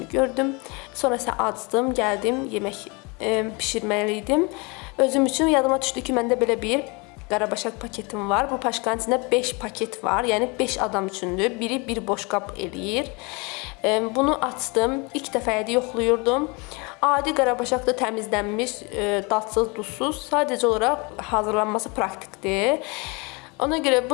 gördüm. Sonra isə acdım, gəldim, yemək bişirməliydim. Özüm üçün yadıma düşdü ki, məndə belə bir qarabaşaq paketim var. Bu paşkanın içində 5 paket var, yəni 5 adam üçündür. Biri bir boşqab eləyir. Bunu açdım, ilk dəfəyədə yoxluyurdum. Adi qarabaşaq da təmizlənmiş, dadsız, duzsuz, sadəcə olaraq hazırlanması praktikdir. Ona görə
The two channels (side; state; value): right; quieter; 28.8 dB